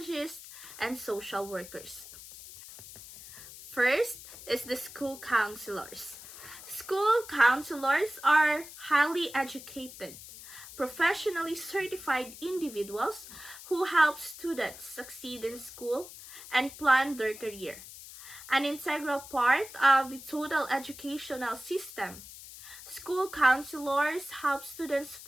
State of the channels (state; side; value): noise; left; hiss, 15 dB below the sound